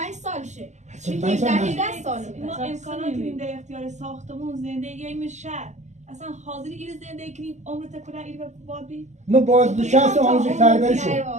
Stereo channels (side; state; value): left; late; 0.34 ms